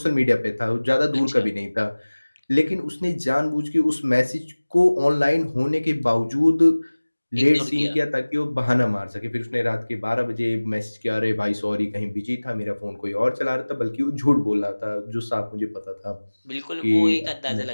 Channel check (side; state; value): both; inverted; correlation -1.00